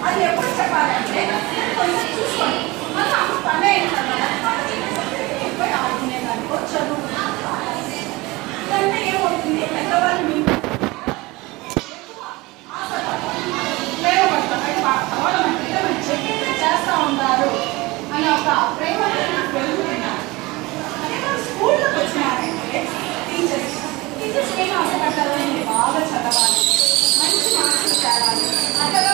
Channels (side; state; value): left; quieter; 22.2 dB